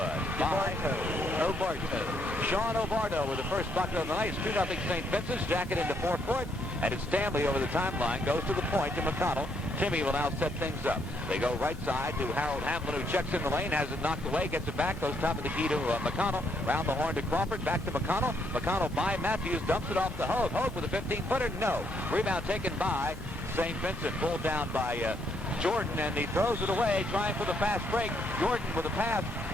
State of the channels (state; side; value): noise; right; hum, 14 dB below the sound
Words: By Obarto. Sean Obarto with the first bucket of the night. 2-0 St. Vincent's. Jacket into forecourt. And it's Stanley over the timeline. Goes to the point to McConnell. Timmy will now set things up. They go right side to Harold Hamlin, who checks in the lane, has it knocked away, gets it back, goes top of the key to McConnell. Round the horn to Crawford, back to McConnell. McConnell by Matthews, dumps it off to Hogue. Hogue with a 15-footer, no. Rebound taken by St. Vincent, pulled down by Jordan, and he throws it away, trying for the fast break. Jordan with a pass